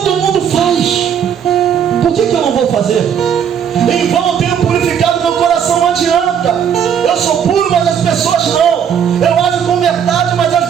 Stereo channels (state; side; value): quieter; left; 8.2 dB